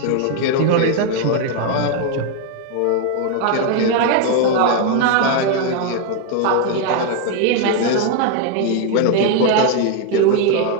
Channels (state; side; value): different; both; correlation 0.01